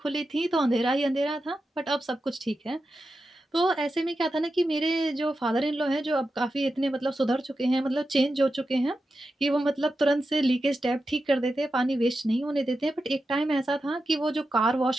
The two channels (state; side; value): normal; both; correlation 0.90